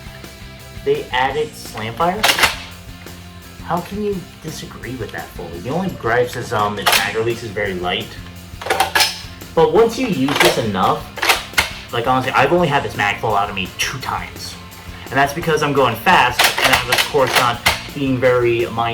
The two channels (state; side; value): identical; both; correlation 1.00